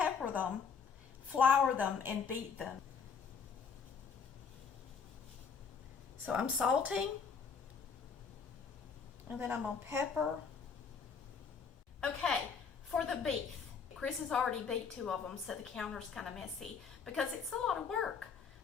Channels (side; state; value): right; quieter; 6.0 dB